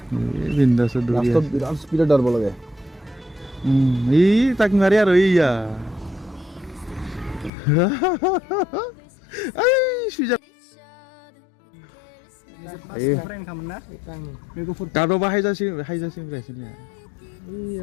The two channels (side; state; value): right; drops out; at 7.5 s